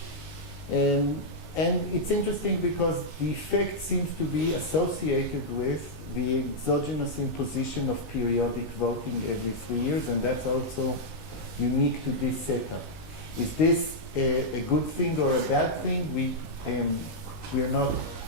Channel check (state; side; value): late; right; 19 ms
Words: And it's interesting because the effect seems to be associated with the exogenous imposition of periodic voting every 3 years, and that's also unique to this setup. Is this a good thing or a bad thing? We're